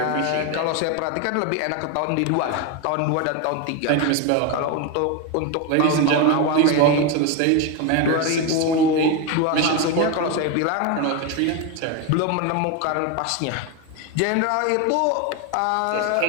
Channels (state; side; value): different; both; correlation 0.02